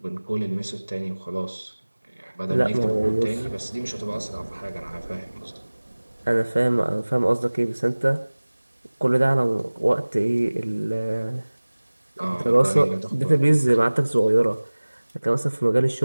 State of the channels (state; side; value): inverted; both; correlation -1.00